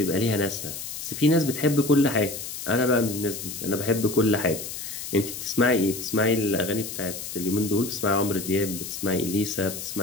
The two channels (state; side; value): noise; left; hiss, 8 dB below the sound